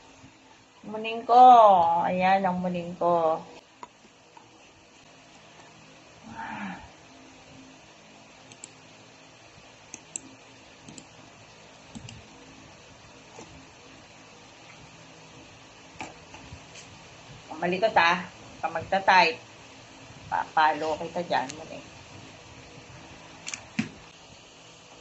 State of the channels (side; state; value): both; identical; correlation 1.00